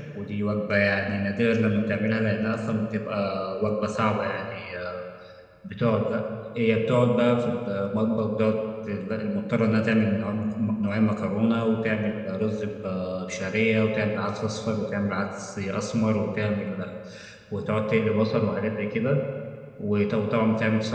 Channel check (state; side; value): identical; both; correlation 1.00